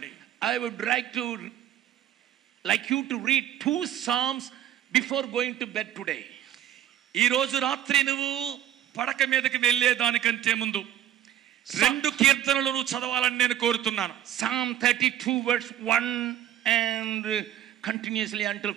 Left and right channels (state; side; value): quieter; left; 11.4 dB